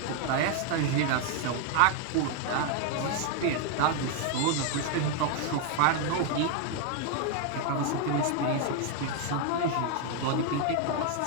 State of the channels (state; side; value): different; both; correlation 0.00